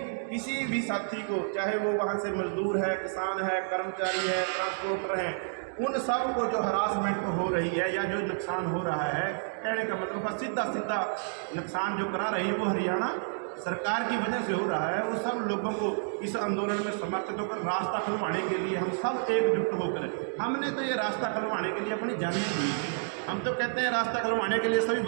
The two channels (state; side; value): silent; left; digital silence